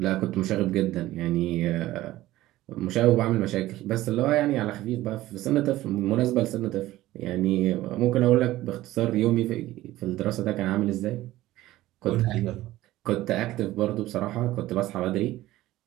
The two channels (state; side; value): quieter; left; 16.1 dB